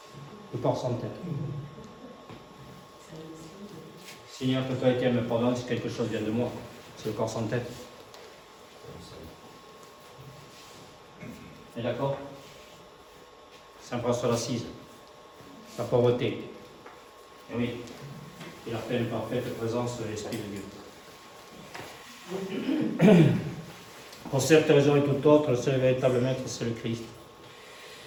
Le corps sans tête. Seigneur, que toi et me pardonne si quelque chose vient de moi. C'est le corps sans tête. Et d'accord? Saint François d'Assise. La pauvreté. Et oui. Et la pleine parfaite présence de l'Esprit de Dieu. Pour cette raison et toute autre, le seul véritable maître, c'est le Christ.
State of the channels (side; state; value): both; identical; correlation 1.00